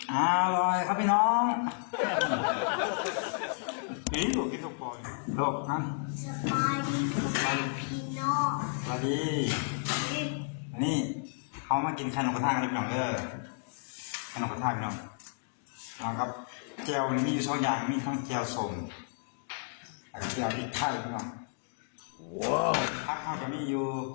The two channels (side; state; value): right; silent; digital silence